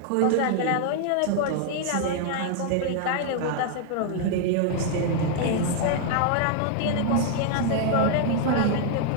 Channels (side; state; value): both; different; correlation 0.00